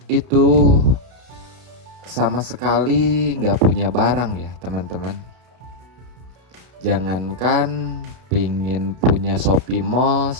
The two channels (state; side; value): late; left; 32 ms